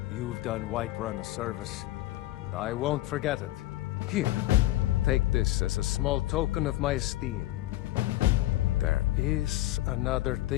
You've done Whiterun a service, and I won't forget it. Here, take this as a small token of my esteem. There is another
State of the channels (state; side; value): quieter; right; 16.2 dB